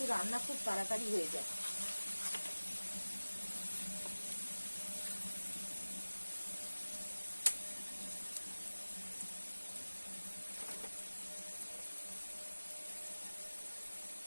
রান্না খুব তাড়াতাড়ি হয়ে যায়।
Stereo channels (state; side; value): inverted; both; correlation -1.00